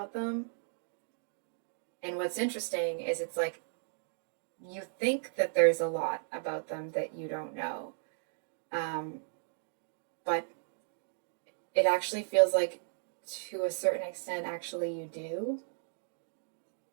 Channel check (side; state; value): left; silent; digital silence